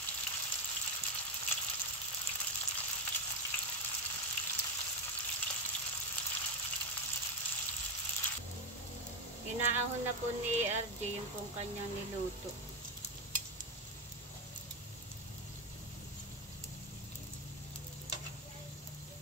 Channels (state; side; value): normal; both; correlation 0.10